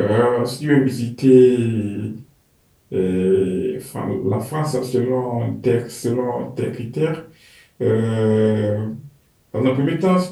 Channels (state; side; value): identical; both; correlation 1.00